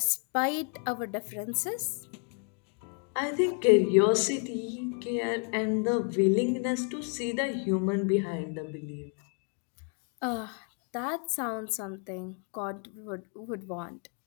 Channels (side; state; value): right; quieter; 39.7 dB